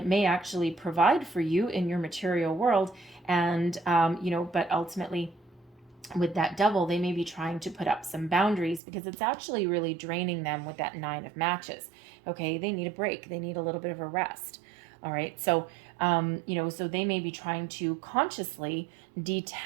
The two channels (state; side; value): drops out; left; at 8.8 s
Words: may actually provide for you in your material world. And, you know, but ultimately with that devil, they may be trying to put up some boundaries because it's actually really draining them with that 9 of matches. Okay, they need a break. They need a little bit of a rest. All right, so, you know, so they may be trying to consciously